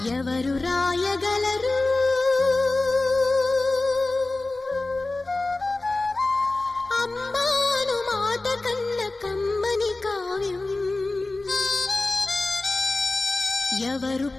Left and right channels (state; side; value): quieter; right; 3.1 dB